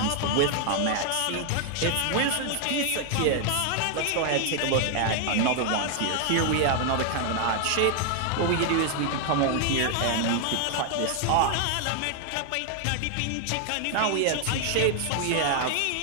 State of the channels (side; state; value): both; different; correlation 0.00